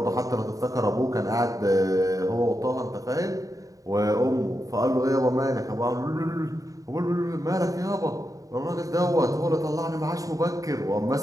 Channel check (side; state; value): left; late; 0.16 ms